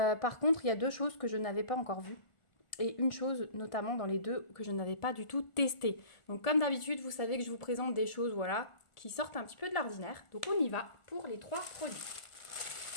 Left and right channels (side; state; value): right; late; 1.4 ms